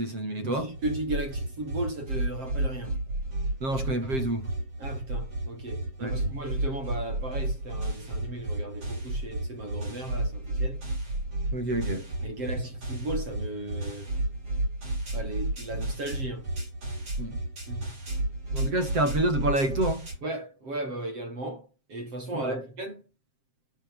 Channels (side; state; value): left; late; 7.5 ms